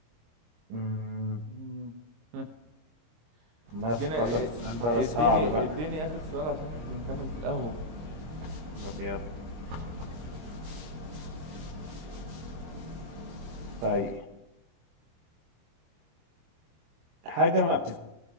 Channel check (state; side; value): late; left; 25 ms